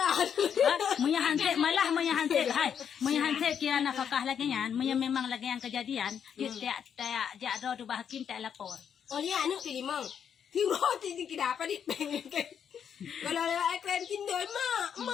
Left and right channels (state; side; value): quieter; right; 8.0 dB